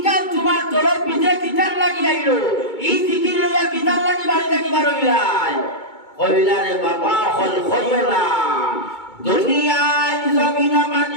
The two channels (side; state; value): right; late; 2.2 ms